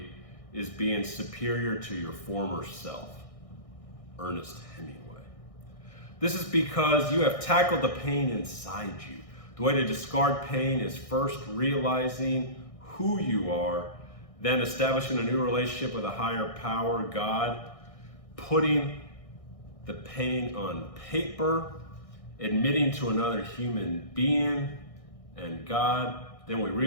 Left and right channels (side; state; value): right; late; 1.6 ms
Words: is being superior to your former self. Ernest Hemingway. This is because you have tackled the pain inside you. The way to discard pain is first realizing who you are, then establishing a new relationship with a higher power, God, putting the pain on paper, admitting to another human being and God. Then we